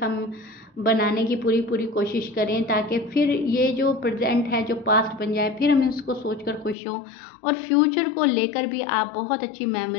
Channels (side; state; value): right; drops out; at 6.8 s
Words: हम बनाने की पूरी पूरी कोशिश करें, ताकि फिर ये जो प्रेजेंट है जो पास्ट बन जाए, फिर हम इसको सोचकर खुश हों। और फ्यूचर को लेकर भी आप बहुत अच्छी